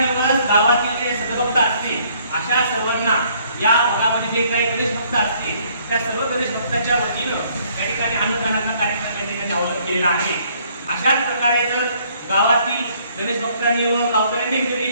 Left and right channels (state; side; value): inverted; both; correlation -0.63